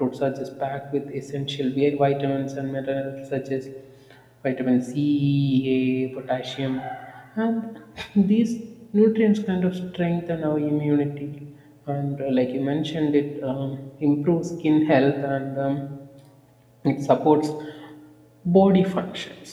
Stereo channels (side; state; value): both; identical; correlation 1.00